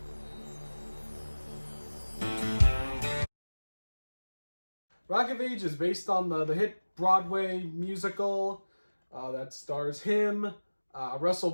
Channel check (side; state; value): both; inverted; correlation -1.00